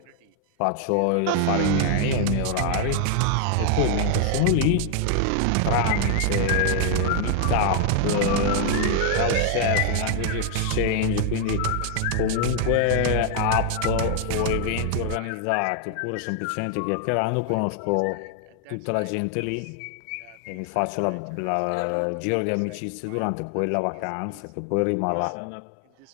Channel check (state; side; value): different; both; correlation 0.00